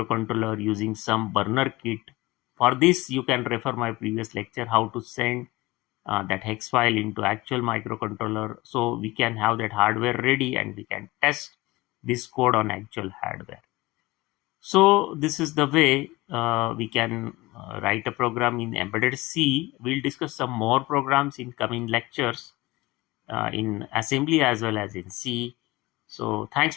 using some burner kit. For this you can refer my previous lecture, how to send that hex file into actual microcontroller, so we can have that hardware ready and we can test this code on actual hardware. So this is the way we can write a program in embedded C. We'll discuss some more programs in coming lectures in assembly as well as in C. So thanks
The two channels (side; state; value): right; quieter; 20.8 dB